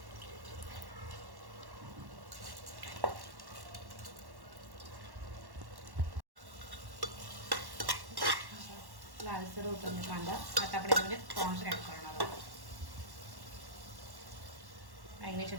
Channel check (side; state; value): left; late; 1.1 ms